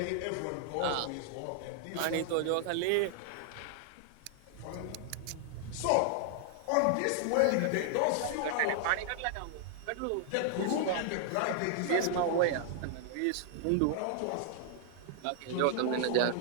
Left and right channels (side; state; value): both; different; correlation 0.00